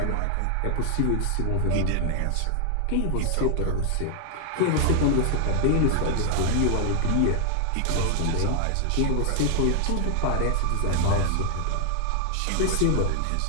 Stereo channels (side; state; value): both; different; correlation 0.00